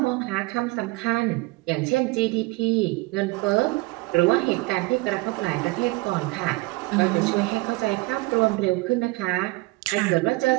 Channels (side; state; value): left; quieter; 23.9 dB